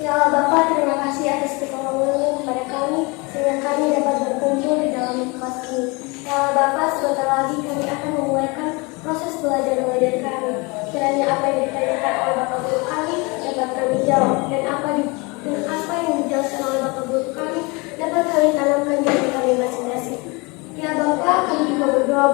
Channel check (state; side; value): quieter; right; 27.6 dB